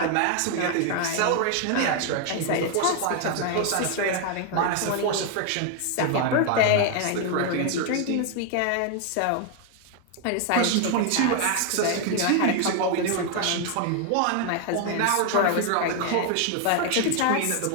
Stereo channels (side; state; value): both; different; correlation 0.00